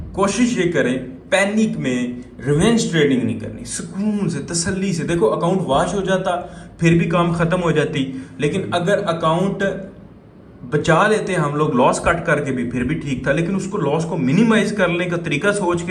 कोशिश ये करें, पैनिक में रिवेंज ट्रेडिंग नहीं करनी, सुकून से तसल्ली से। देखो अकाउंट वॉश हो जाता फिर भी काम खत्म हो जाती, लेकिन अगर अकाउंट बचा लेते हम लोग लॉस कट करके भी फिर भी ठीक था, लेकिन उसको लॉस को मिनिमाइज करने का तरीका सोच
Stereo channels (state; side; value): identical; both; correlation 1.00